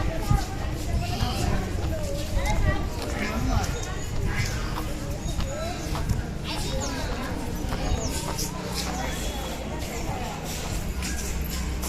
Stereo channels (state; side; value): identical; both; correlation 1.00